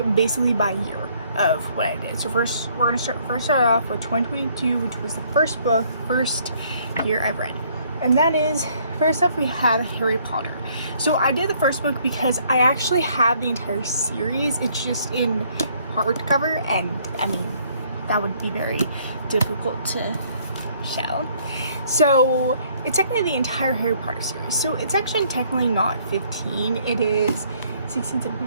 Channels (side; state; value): both; inverted; correlation -0.64